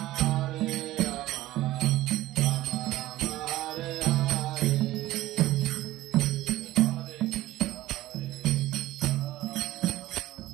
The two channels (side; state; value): left; quieter; 16.2 dB